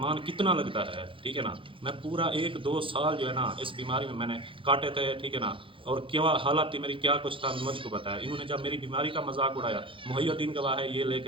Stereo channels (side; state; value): left; late; 0.25 ms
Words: کتنا لگتا ہے، ٹھیک ہے نا. میں پورا 1-2 سال جو ہے نا اس بیماری میں نے کاٹے تھے، ٹھیک ہے نا، اور کیا حالات تھی میری، کیا کچھ تھا مجھ کو بتایا. انہوں نے جب میری بیماری کا مذاق اڑایا، محی الدین گواہ ہے، یہ لے